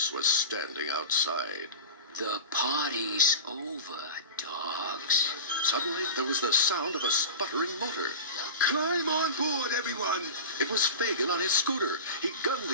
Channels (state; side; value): inverted; both; correlation -0.30